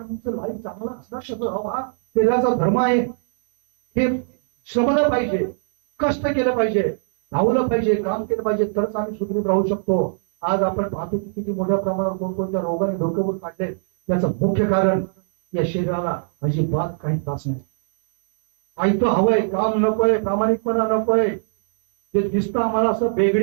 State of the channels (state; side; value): silent; left; digital silence